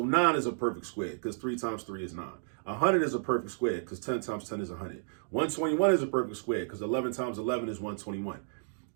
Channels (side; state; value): left; silent; digital silence